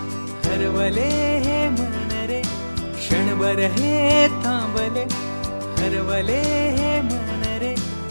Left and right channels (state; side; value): inverted; both; correlation -1.00